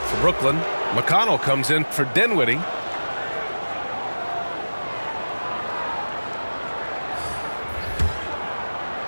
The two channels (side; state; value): both; inverted; correlation -1.00